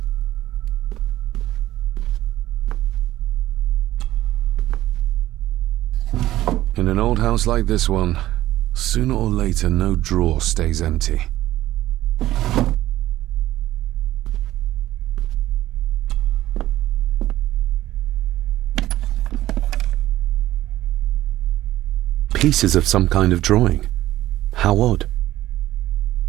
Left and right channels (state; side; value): quieter; left; 14.8 dB